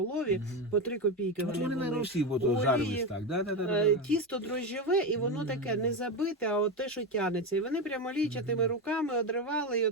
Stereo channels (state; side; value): normal; both; correlation 0.15